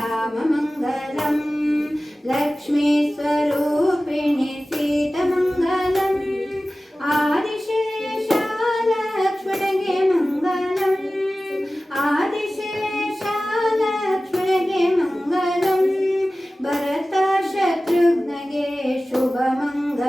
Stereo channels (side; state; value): both; normal; correlation 0.96